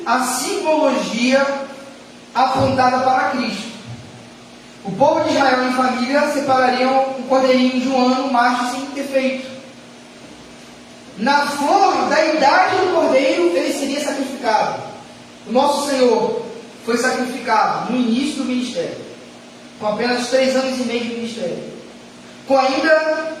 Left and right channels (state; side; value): identical; both; correlation 1.00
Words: a simbologia apontada para Cristo. O povo de Israel em família separariam um cordeirinho de 1 ano, macho sem defeito. Na flor da idade do cordeiro, ele seria sacrificado. O nosso Senhor foi sacrificado no início do ministério, com apenas 3 anos e meio de ministério, com ainda